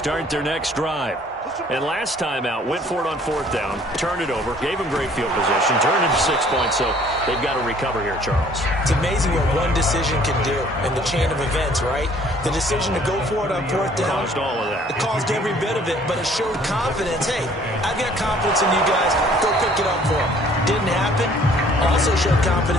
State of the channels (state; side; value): normal; both; correlation 0.57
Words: their next drive. And last time out, went for it on 4th down, turned it over, gave him great field position, turned it to 6 points, so they've got to recover here, Charles. It's amazing what one decision can do in the chain of events, right? The decision to go for it on 4th down. Caused all of that. It caused every bit of it, but it showed confidence. Hey, I've got confidence in you guys. Go pick it up for them. Didn't happen. Also showed